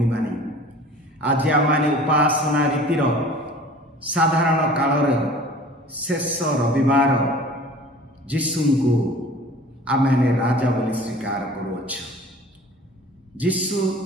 माने, आज आमाने उपासना रीतिर साधारण कालर शेष रविवार जीशु को आमे राजा बोली स्वीकार करुअछ। जीशु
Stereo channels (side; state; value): both; normal; correlation 0.45